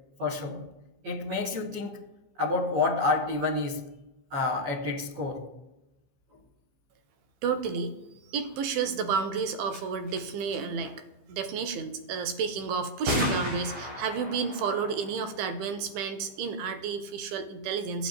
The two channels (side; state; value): left; late; 15 ms